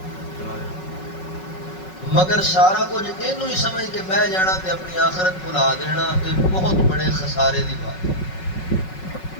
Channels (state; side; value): late; right; 5.4 ms